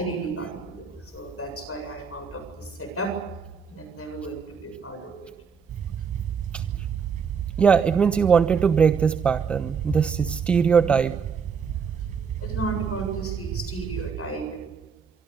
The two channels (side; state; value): left; quieter; 6.2 dB